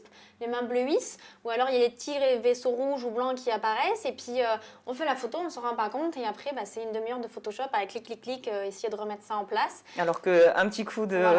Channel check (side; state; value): both; identical; correlation 1.00